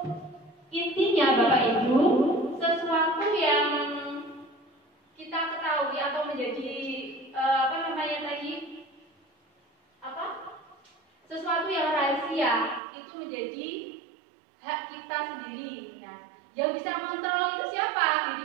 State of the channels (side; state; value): left; drops out; at 12.8 s